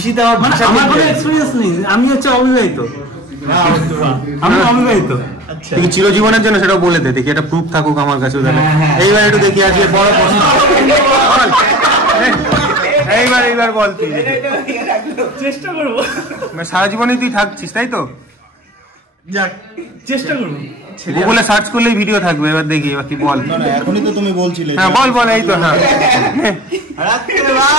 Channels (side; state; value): both; normal; correlation 0.40